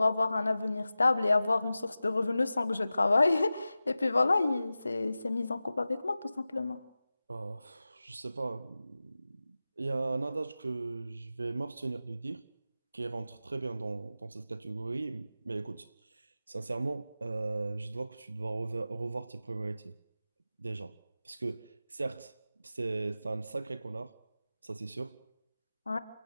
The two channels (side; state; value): both; inverted; correlation -0.94